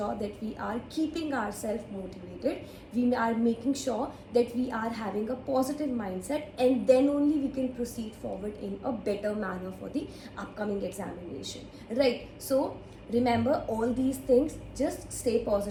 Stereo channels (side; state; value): both; identical; correlation 1.00